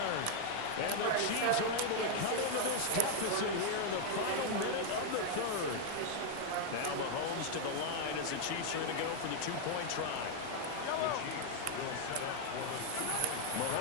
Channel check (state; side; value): different; both; correlation 0.00